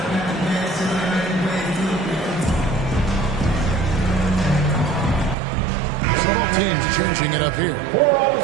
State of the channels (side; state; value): left; drops out; at 5.4 s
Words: Teams changing it up here.